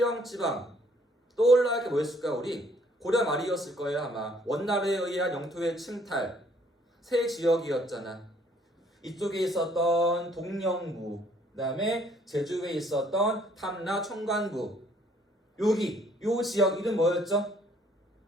지방 떠올라야 게 뭐였을까? 우리 고려 말이었을 거예요 아마. 원나라에 의한 영토의 침탈, 새 지역이었잖아. 이쪽에 있었던 동령부, 그 다음에 제주에 있었던 탐라 총관부, 여기 요 지역 이름 뭐였죠?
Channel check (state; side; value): normal; both; correlation 0.63